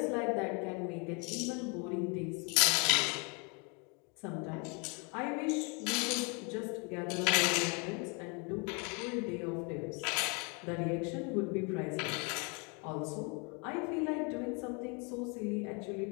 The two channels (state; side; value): quieter; right; 33.2 dB